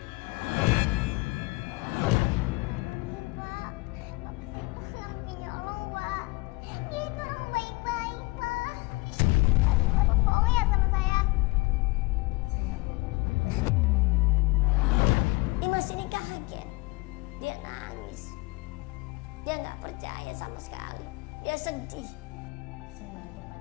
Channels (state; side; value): quieter; right; 25.0 dB